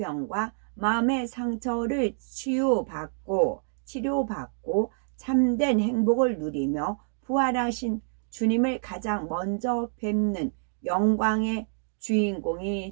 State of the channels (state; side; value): silent; left; digital silence